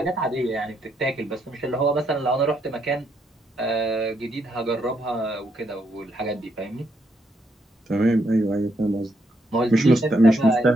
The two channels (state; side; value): normal; both; correlation 0.76